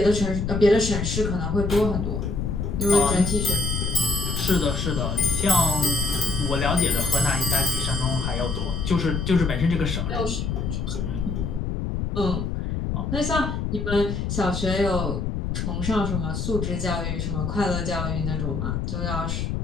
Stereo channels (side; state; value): left; noise; rumble, 2 dB below the sound